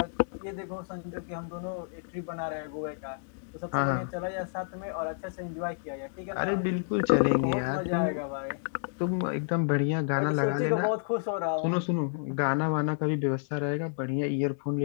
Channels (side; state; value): right; silent; digital silence